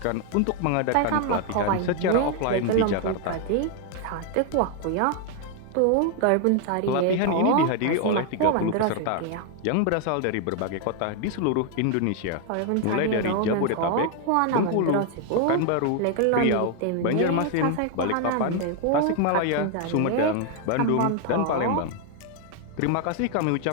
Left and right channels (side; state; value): both; different; correlation 0.00